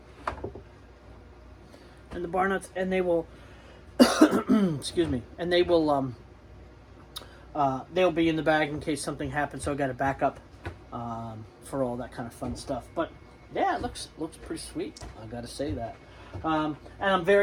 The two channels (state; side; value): identical; both; correlation 1.00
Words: And the bar nuts, and they will excuse me, and they will they'll be in the bag in case something happens, so I got to back up for all that kind of fun stuff. But yeah, it looks pretty sweet, I gotta say that. And I'm